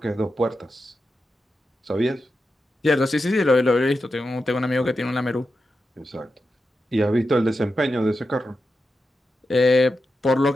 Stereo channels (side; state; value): both; normal; correlation 0.89